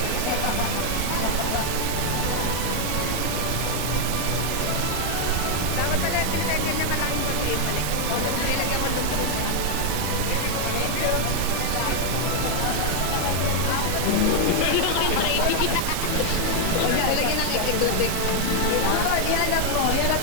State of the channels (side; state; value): both; different; correlation 0.00